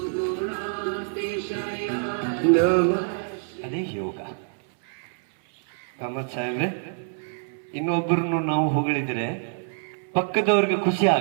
ನಮಃ ಅದೇ ಯೋಗ ಕಾಮತ್ ಸಾಹೇಬ್ರೆ ಇನ್ನೊಬ್ಬರನ್ನು ನಾವು ಹೊಗಳಿದ್ರೆ ಪಕ್ಕದವ್ರಿಗೆ ಖುಷಿ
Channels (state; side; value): silent; left; 61 dB below the other